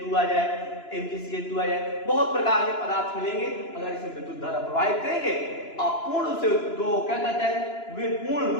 आ जाए, MgCl2 आ जाए, बहुत प्रकार के पदार्थ मिलेंगे। अगर इसमें विद्युत धारा प्रवाहित करेंगे, आप पूर्ण रूप से दो क्या कहते हैं, वे पूर्ण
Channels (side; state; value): right; late; 2.9 ms